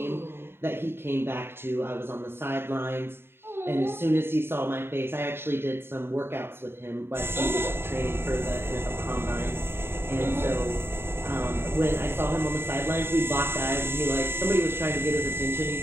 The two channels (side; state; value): left; late; 0.11 ms